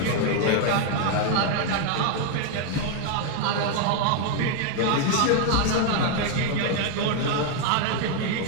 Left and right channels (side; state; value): both; different; correlation 0.01